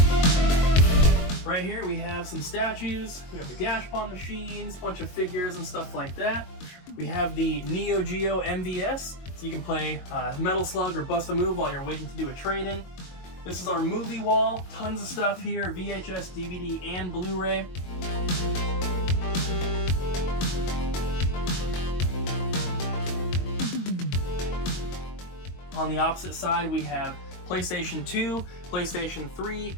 Right here we have some statues, we have the Gashpon machines, a bunch of figures and stuff like that. We have the Neo Geo MVS, so you can play Metal Slug or Bust a Move while you're waiting to do a trade-in. This is our movie wall, tons of stuff here, VHS, DVD, and Blu-ray. On the opposite side we have PlayStation 2, PlayStation 3,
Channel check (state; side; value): late; right; 22 ms